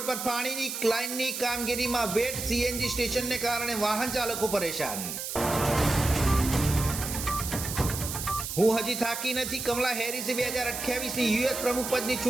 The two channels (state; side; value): noise; right; hiss, 5 dB below the sound